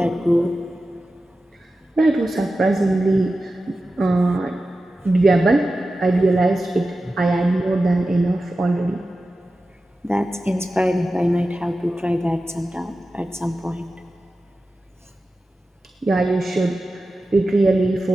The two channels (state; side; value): normal; both; correlation 0.94